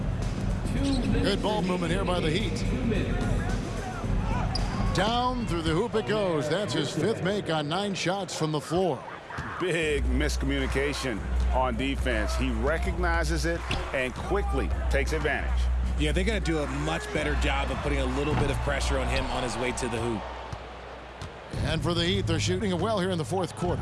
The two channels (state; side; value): identical; both; correlation 1.00